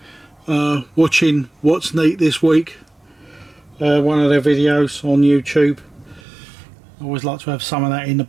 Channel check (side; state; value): left; drops out; at 6.2 s